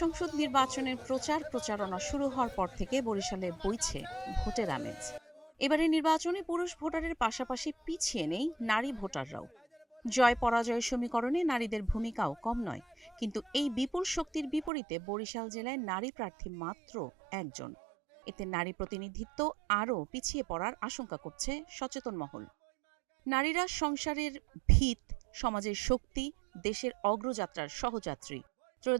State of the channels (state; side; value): drops out; left; at 14.7 s